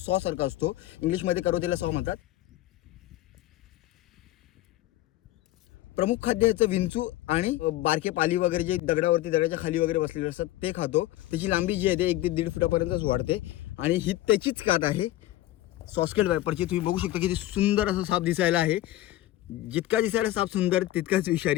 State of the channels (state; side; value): quieter; right; 15.3 dB